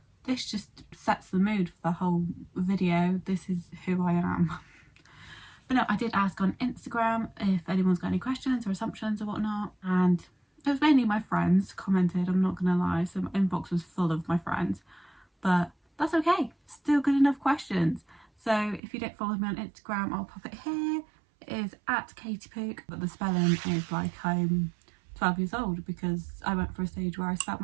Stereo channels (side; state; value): left; drops out; at 18.8 s